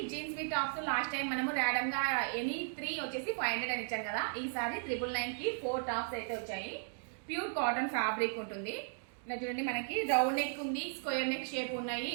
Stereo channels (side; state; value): left; silent; digital silence